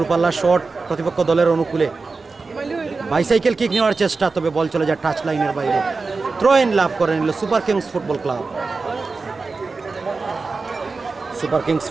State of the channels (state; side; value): quieter; left; 4.1 dB